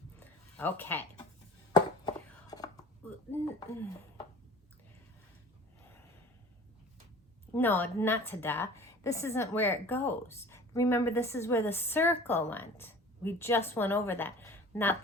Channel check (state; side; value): normal; both; correlation 0.44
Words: Okay. No, not ta-da. This isn't where it goes. Remember, this is where the circle went. We just went over that, not